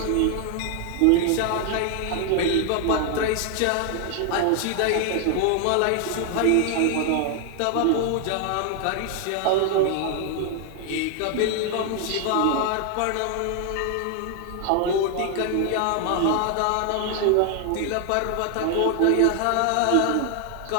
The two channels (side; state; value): both; different; correlation 0.00